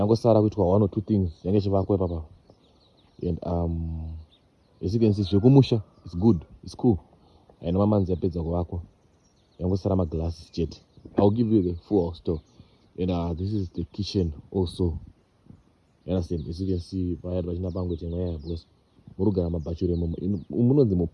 Sara with 1 or 2 things. And as you can see, Shokumusha is good, it's cool. And Mama Nzapeza Wako. Yango Sarama glass jet. I'll give you the full house tour. And this is the kitchen also. You understand? As you can see, I had Vajina Bango because Murugana Bachure Umuno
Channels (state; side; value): identical; both; correlation 1.00